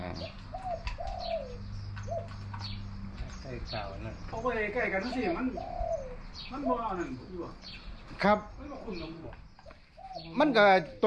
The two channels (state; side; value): identical; both; correlation 1.00